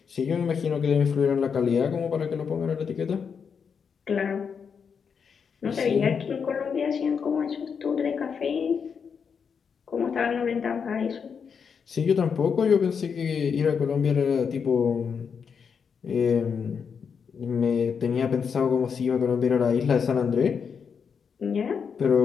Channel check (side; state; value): right; quieter; 6.4 dB